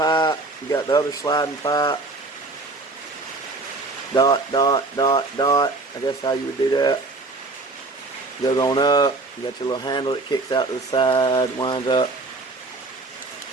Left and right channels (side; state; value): left; quieter; 3.3 dB